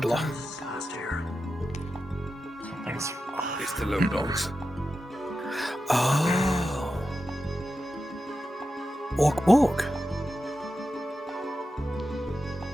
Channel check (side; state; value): both; normal; correlation 0.91